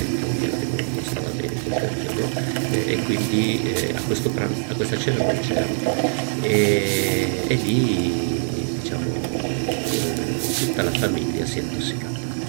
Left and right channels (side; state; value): left; silent; 60 dB below the other